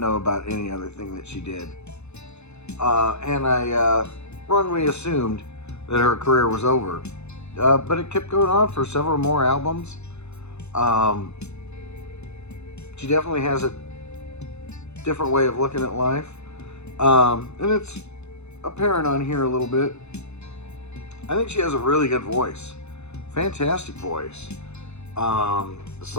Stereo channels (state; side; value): late; right; 0.81 ms